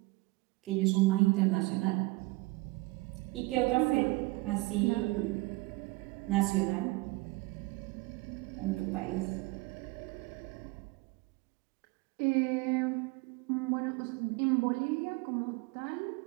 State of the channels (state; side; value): quieter; left; 23.3 dB